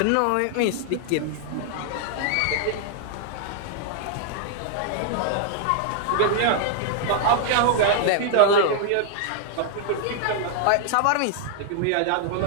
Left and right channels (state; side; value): different; both; correlation -0.01